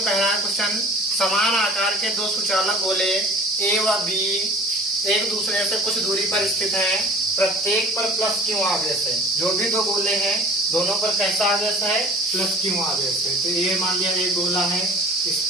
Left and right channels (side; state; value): both; normal; correlation 0.44